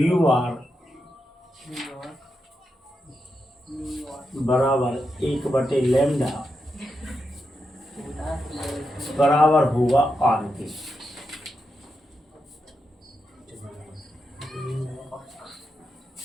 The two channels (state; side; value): normal; both; correlation 0.86